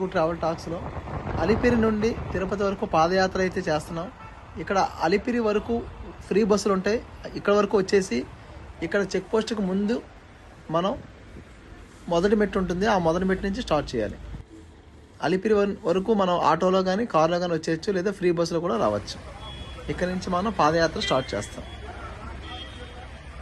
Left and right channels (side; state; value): both; identical; correlation 1.00